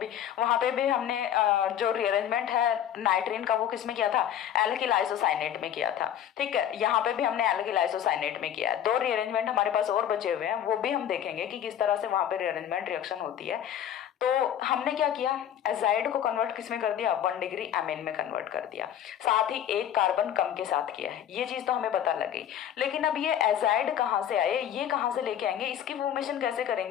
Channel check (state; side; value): quieter; right; 10.3 dB